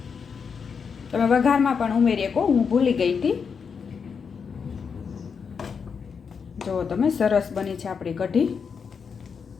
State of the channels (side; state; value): right; quieter; 6.1 dB